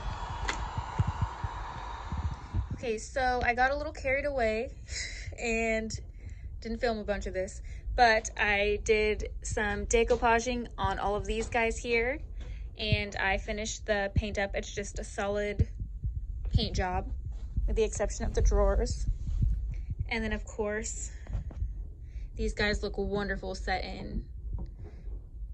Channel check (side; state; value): both; identical; correlation 1.00